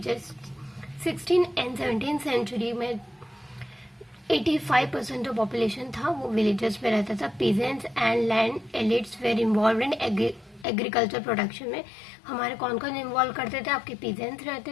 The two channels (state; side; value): drops out; right; at 10.7 s